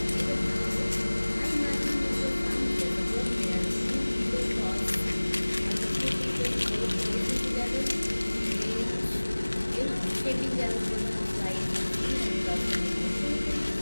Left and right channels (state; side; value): inverted; both; correlation -1.00